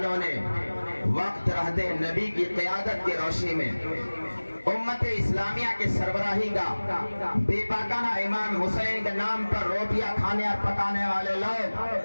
نے وقت رہتے نبی کی قیادت کی روشنی میں امت اسلامیہ کے سربراہی کا بے پاکانہ امام حسین کے نام پر روٹیاں کھانے اور پکانے والے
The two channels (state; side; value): inverted; both; correlation -1.00